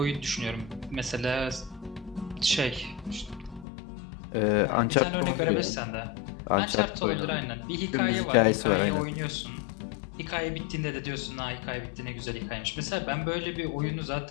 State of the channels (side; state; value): right; drops out; at 3.7 s